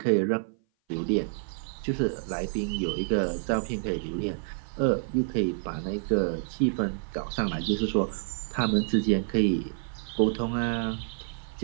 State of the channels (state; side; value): silent; left; 56 dB below the other